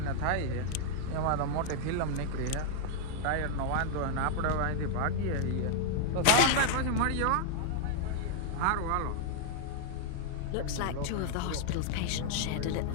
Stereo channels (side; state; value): both; different; correlation 0.00